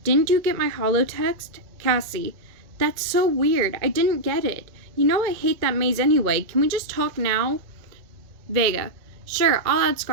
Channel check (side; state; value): left; late; 2.2 ms